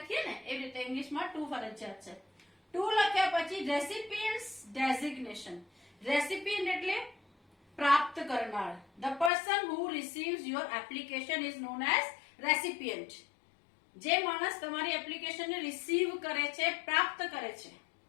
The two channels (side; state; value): right; drops out; at 9.3 s